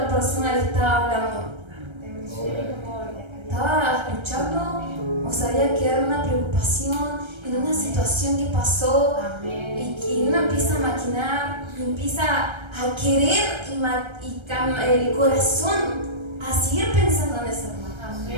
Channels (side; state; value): left; late; 1.3 ms